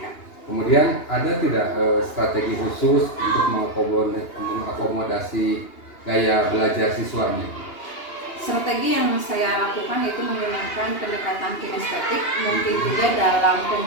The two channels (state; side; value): late; right; 2.8 ms